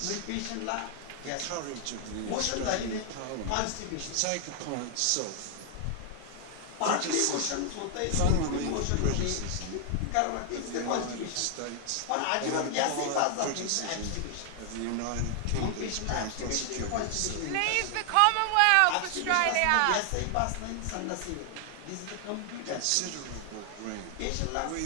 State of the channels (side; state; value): both; different; correlation 0.00